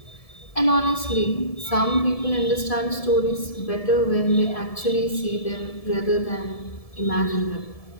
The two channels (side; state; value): right; late; 1.7 ms